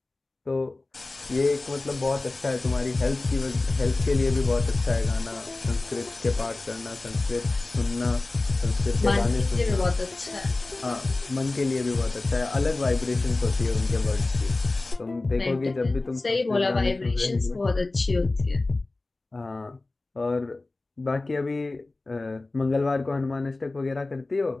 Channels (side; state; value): right; quieter; 3.1 dB